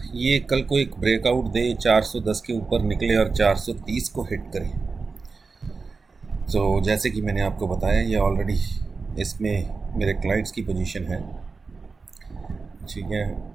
ये कल को एक ब्रेकआउट दे, 410 के ऊपर निकले और 430 को हिट करे. तो जैसे कि मैंने आपको बताया, ये ऑलरेडी इसमें मेरे क्लाइंट्स की पोजीशन है, ठीक है.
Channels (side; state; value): left; quieter; 4.4 dB